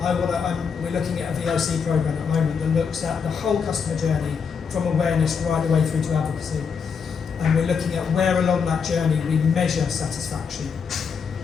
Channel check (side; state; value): right; quieter; 6.1 dB